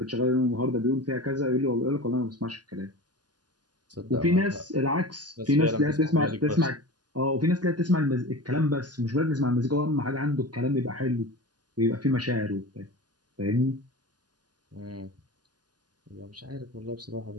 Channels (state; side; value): late; left; 0.70 ms